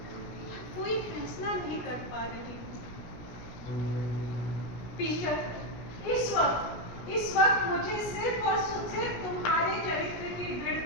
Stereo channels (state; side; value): late; right; 17 ms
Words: कोई फैसला नहीं कर पा रही हूँ। पीटर, इस वक्त मुझे सिर्फ और सिर्फ तुम्हारे चरित्र की